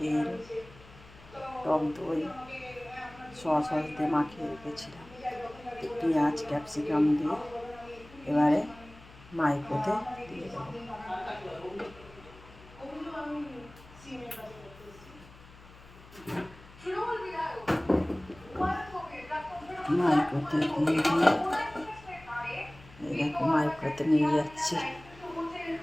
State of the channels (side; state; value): left; noise; hum, 21 dB below the sound